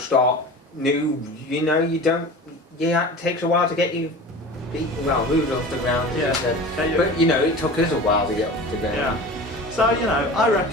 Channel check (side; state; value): both; normal; correlation 0.36